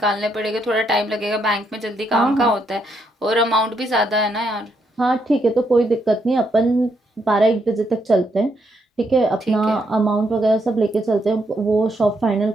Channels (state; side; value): normal; both; correlation 0.76